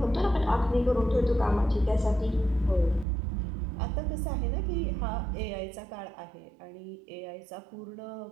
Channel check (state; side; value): drops out; left; at 3.1 s